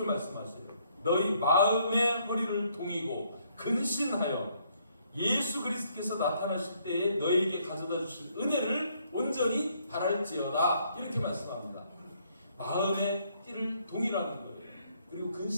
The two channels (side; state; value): both; inverted; correlation -0.69